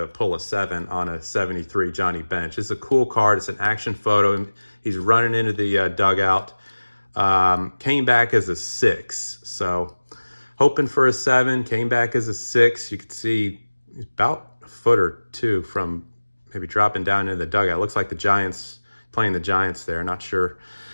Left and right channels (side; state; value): both; inverted; correlation -1.00